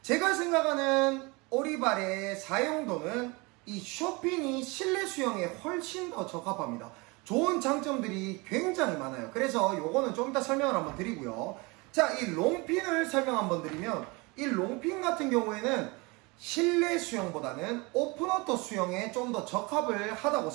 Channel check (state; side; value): quieter; left; 26.4 dB